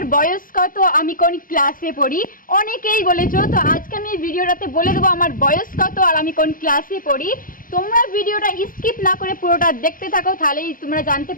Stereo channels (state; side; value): late; right; 0.40 ms